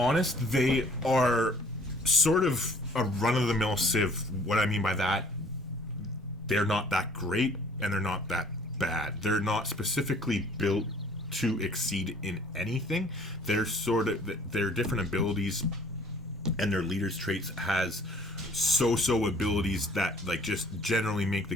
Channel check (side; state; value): both; normal; correlation 0.55